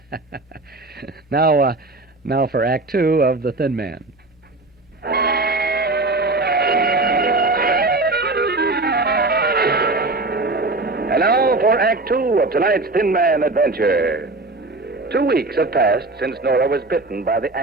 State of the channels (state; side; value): quieter; left; 3.1 dB